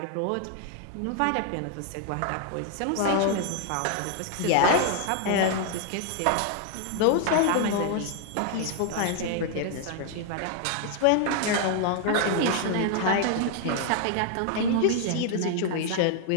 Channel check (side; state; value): both; different; correlation 0.00